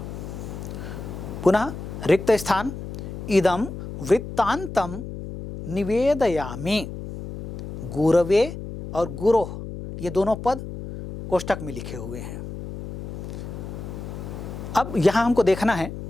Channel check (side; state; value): left; noise; hum, 9 dB below the sound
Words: पुनः रिक्त स्थान इदम वृत्तांतम निवेदयामि। गुरवे और गुरोह ये दोनों पद कोष्ठक में लिखे हुए हैं। अब यहाँ हमको देखना है